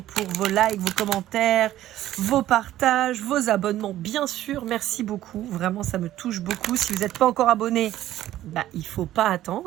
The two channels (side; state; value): left; quieter; 13.6 dB